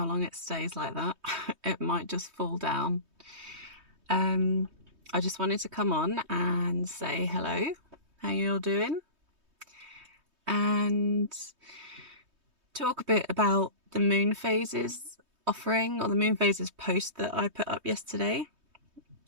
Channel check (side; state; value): left; late; 3.2 ms